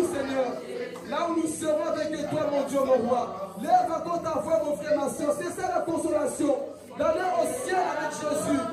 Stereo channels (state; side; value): identical; both; correlation 1.00